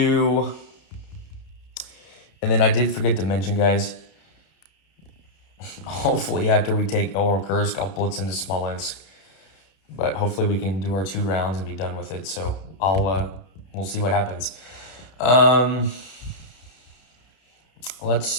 And then I did forget to mention, guys, hopefully after we take Oral Kursk, I'll blitz into Smolensk. But hopefully we can do our 2 rounds and be done with it. So we'll see what happens. Let's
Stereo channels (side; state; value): right; late; 31 ms